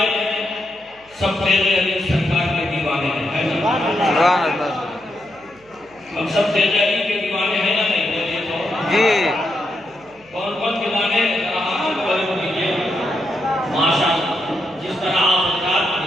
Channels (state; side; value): noise; right; hum, 30 dB below the sound